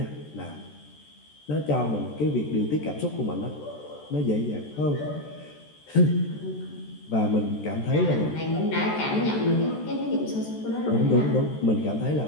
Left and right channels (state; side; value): late; right; 14 ms